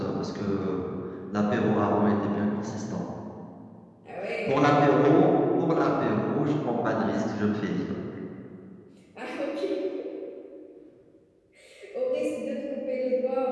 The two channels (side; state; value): both; identical; correlation 1.00